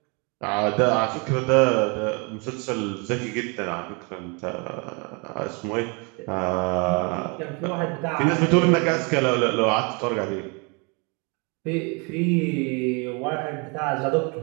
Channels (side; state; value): left; quieter; 32.1 dB